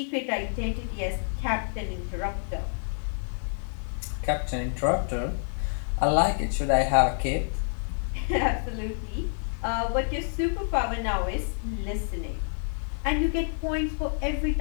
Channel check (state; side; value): silent; right; 59 dB below the other